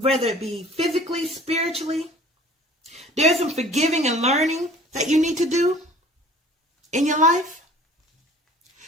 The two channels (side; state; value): both; normal; correlation 0.49